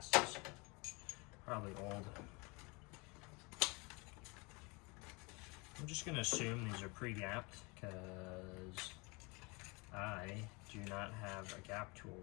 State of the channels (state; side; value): quieter; right; 28.2 dB